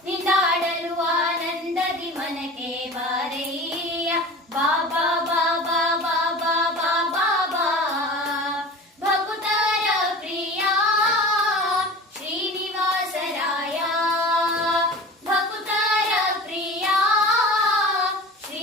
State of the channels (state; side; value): normal; both; correlation 0.37